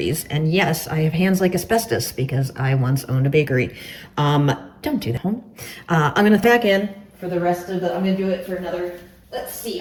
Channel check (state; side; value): identical; both; correlation 1.00